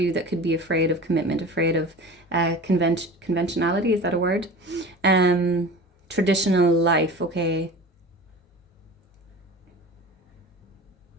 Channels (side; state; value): both; normal; correlation 0.36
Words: that could be afraid of commitment, afraid of conventionality, is that a word? Traditional life, okay?